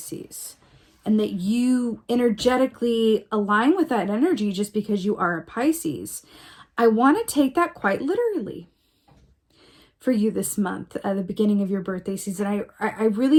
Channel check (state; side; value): identical; both; correlation 1.00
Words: and that you energetically align with that energy just because you are a Pisces, I want to take that quite literally for you this month, at the beginning of your birthday season. I